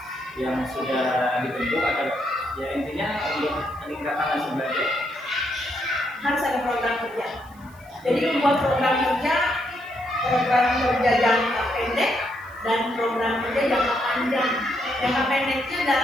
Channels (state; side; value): noise; right; hiss, 28 dB below the sound